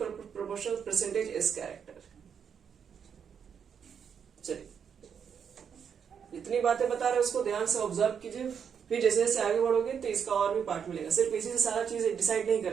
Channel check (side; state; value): left; quieter; 7.4 dB